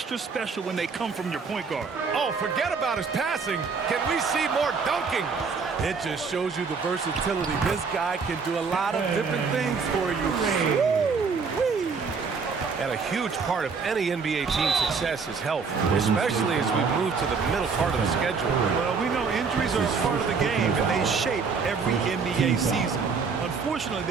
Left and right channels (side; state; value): left; quieter; 5.2 dB